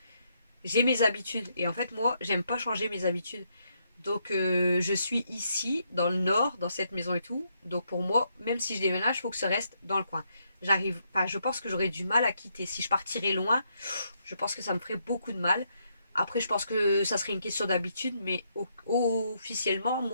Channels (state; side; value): inverted; both; correlation -0.76